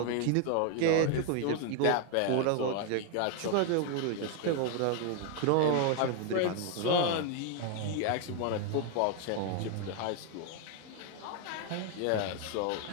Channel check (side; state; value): both; different; correlation 0.01